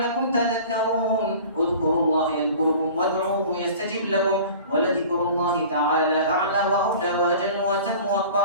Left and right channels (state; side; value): inverted; both; correlation -0.42